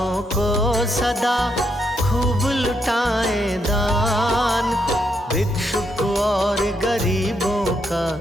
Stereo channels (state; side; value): normal; both; correlation 0.78